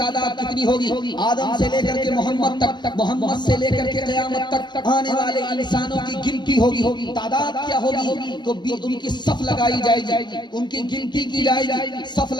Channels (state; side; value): late; right; 0.21 ms